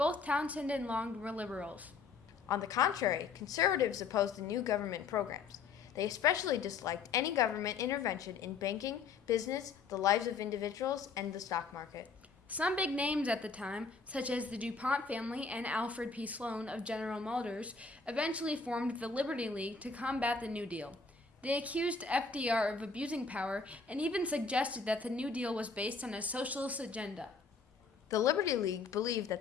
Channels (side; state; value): right; quieter; 4.9 dB